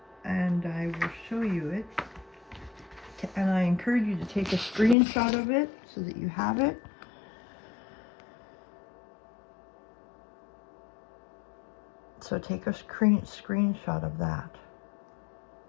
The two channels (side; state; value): right; drops out; at 5.0 s